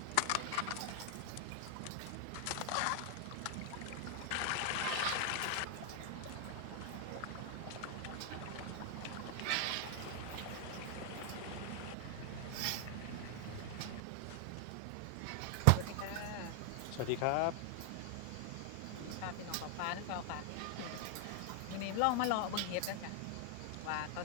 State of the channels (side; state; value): both; different; correlation 0.00